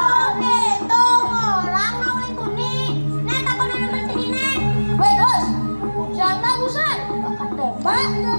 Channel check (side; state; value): both; inverted; correlation -1.00